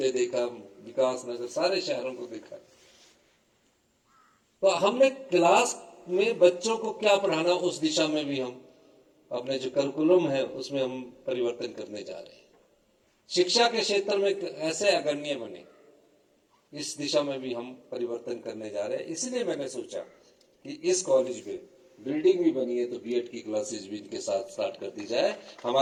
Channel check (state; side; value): identical; both; correlation 1.00